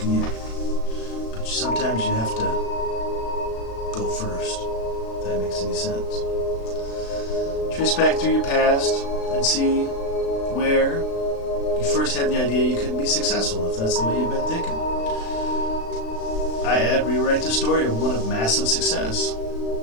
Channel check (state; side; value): late; right; 36 ms